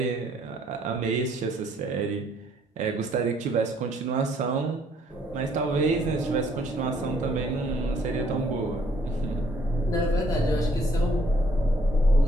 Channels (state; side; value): normal; both; correlation 0.65